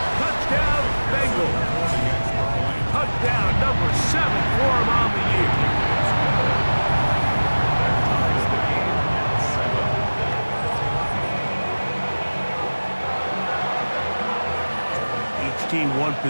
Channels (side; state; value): both; inverted; correlation -1.00